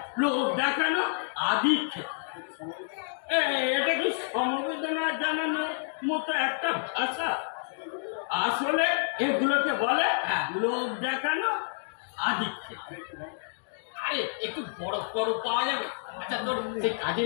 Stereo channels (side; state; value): right; silent; digital silence